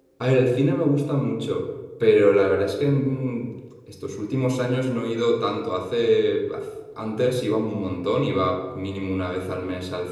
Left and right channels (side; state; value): both; identical; correlation 1.00